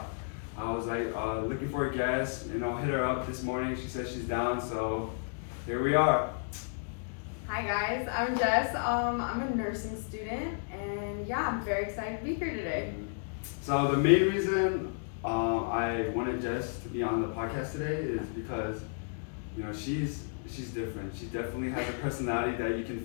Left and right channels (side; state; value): right; silent; digital silence